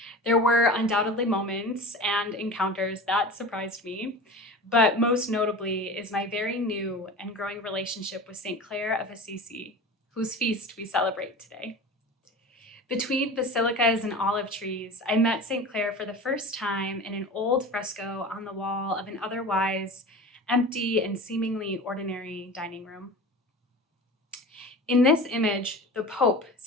There were undoubtedly moments and encounters that surprised me, but most notably is my very new and growing relationship with St. Clare of Assisi, whose feast we celebrate today. Between basilicas and olive trees, I met St. Clare for the first time in an old fresco on the wall of an otherwise empty and seemingly ordinary dining room. In this image, the Pope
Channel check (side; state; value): both; normal; correlation 0.34